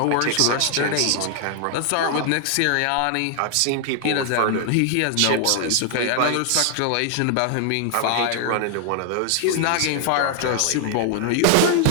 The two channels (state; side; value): different; both; correlation 0.00